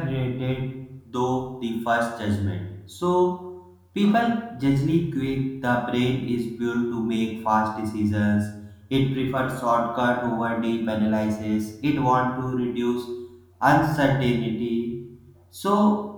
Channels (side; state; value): both; identical; correlation 1.00